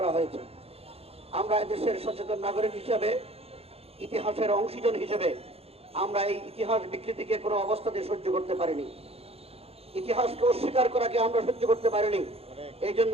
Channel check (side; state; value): left; late; 0.29 ms